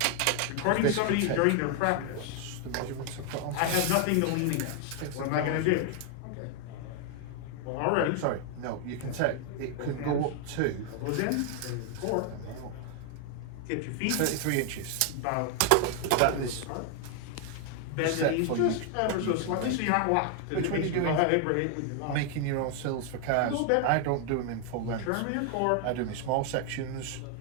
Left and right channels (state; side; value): different; both; correlation 0.00